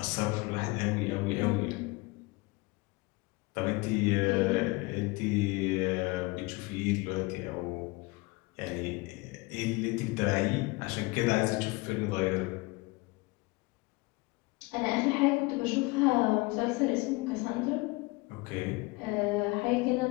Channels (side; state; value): right; quieter; 24.5 dB